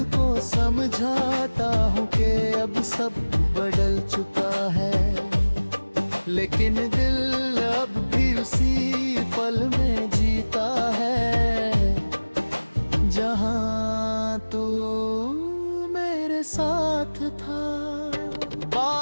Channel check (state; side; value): inverted; both; correlation -1.00